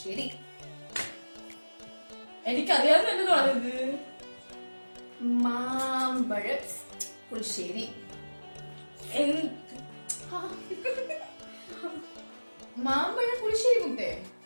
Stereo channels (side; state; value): both; inverted; correlation -1.00